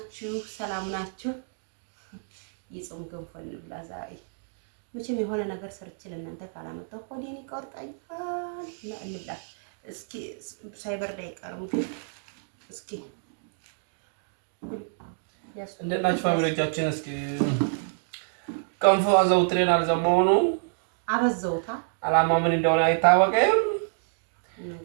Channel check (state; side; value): silent; left; digital silence